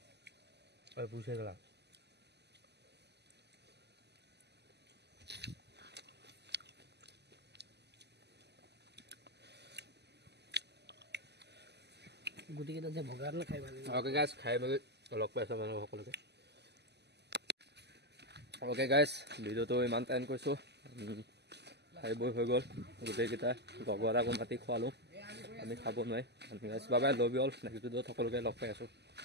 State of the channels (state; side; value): late; left; 0.49 ms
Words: পুষে গেলা গুটিকেইটা যে ভগালে খাই ভাল লাগে ওকে গাইছ খাই মেলি লগ পাইছোঁ মানুহ সকলোকে ওকে গাইছ ভিডিঅ'টো ইমান টাইম কৰিছোঁ খাই বৈ হৈ গ'ল গোটেইকেইটা লগৰ আকৌ মাতি খোৱালোঁ আমি খাব নোৱাৰি গাইছ বাবাই লবি হ'ল নেক্সট ভিডিঅ'ত সকলোকে লগ পাই আছোঁ